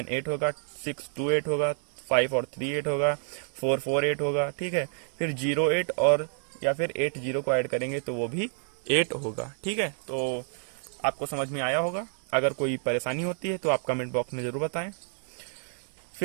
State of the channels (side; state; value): left; silent; digital silence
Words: 8 होगा, 6 2 8 होगा, 5 और 3 8 होगा, 4 4 8 होगा। ठीक है, फिर 0 8 और या फिर 8 0 को ऐड करेंगे तो वो भी 8 होगा। ठीक है, तो आपको समझ में आया होगा। अगर कोई परेशानी होती है तो आप कमेंट बॉक्स में ज़रूर बताएं।